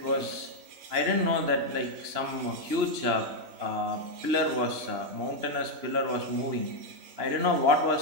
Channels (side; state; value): left; late; 3.0 ms